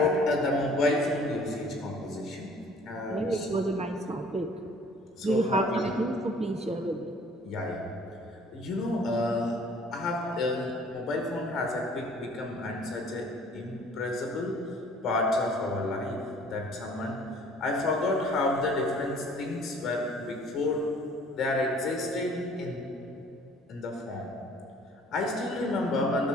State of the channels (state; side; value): normal; both; correlation 0.53